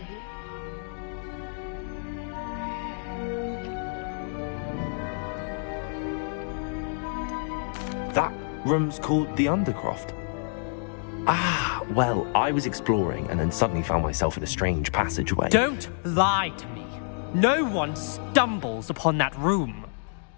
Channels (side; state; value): right; silent; 59 dB below the other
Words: That room's called the Undercroft. Ah, well, I was exploring and then suddenly found myself in a strange passageway. Don't lie to me. No one stumbles upon that room.